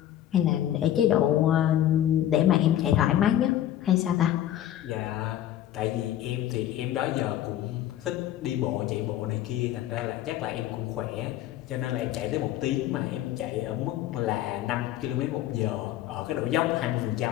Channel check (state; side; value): quieter; right; 12.2 dB